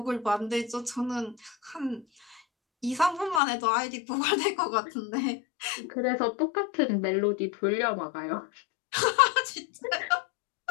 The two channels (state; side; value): drops out; right; at 3.4 s